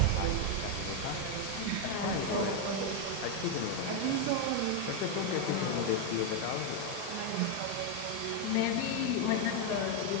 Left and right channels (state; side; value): different; both; correlation 0.01